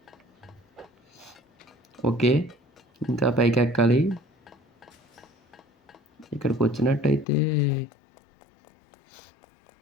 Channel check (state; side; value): drops out; right; at 7.2 s